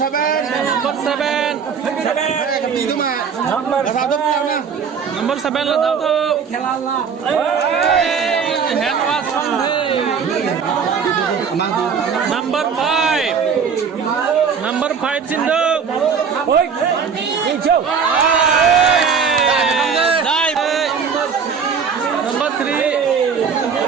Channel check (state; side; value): quieter; left; 6.3 dB